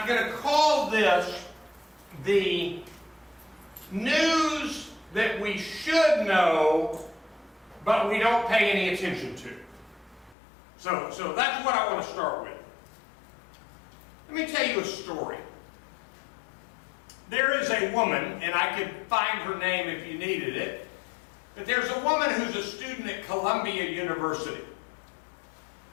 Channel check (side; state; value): right; drops out; at 10.4 s